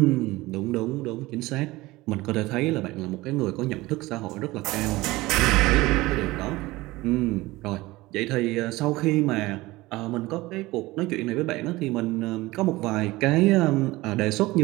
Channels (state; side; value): quieter; left; 19.7 dB